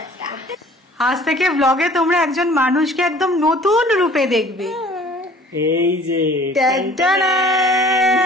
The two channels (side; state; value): both; normal; correlation 0.50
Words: আজ থেকে ব্লগে তোমরা একজন মানুষকে একদম নতুন রূপে দেখবে। এই যে